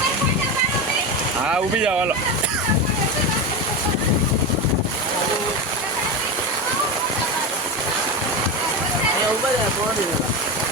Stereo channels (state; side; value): normal; both; correlation 0.18